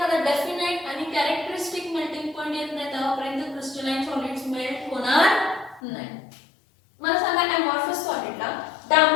definite आणि characteristic melting point येत नाही तेव्हापर्यंत crystalline solids melt होणार नाही. मला सांगा, अमॉर्फस सॉलिडला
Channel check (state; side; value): drops out; right; at 5.8 s